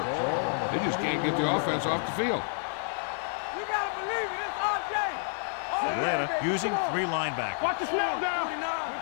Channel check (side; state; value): right; silent; digital silence